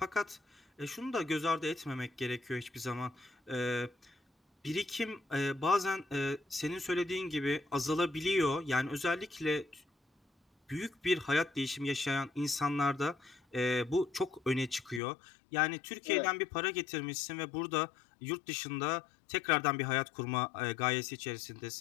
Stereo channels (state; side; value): drops out; right; at 15.0 s